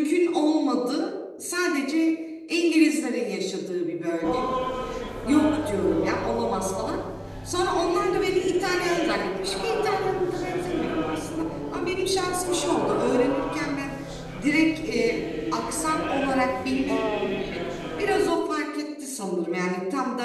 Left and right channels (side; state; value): both; identical; correlation 1.00